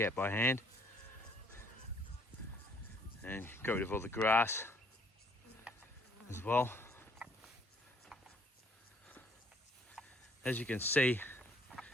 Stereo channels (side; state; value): both; normal; correlation 0.63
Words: by hand and got rid of all the grass as well. As you can see,